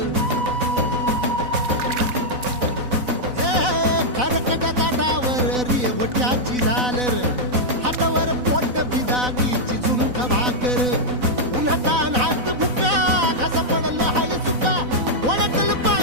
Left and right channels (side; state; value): left; late; 4.0 ms